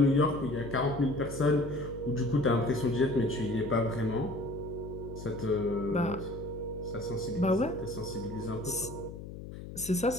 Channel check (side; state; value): left; noise; hum, 11 dB below the sound